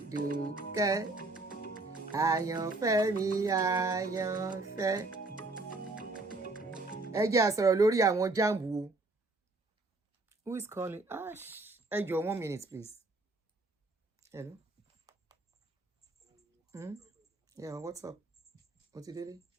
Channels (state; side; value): quieter; left; 3.1 dB